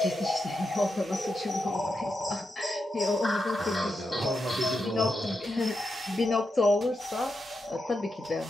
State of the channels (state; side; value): normal; both; correlation 0.86